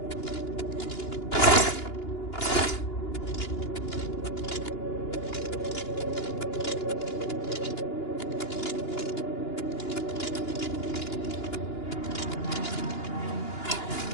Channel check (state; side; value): late; right; 2.9 ms